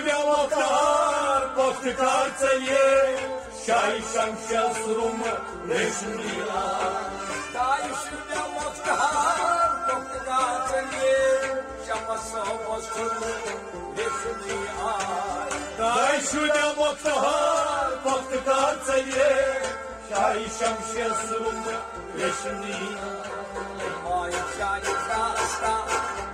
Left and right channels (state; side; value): identical; both; correlation 1.00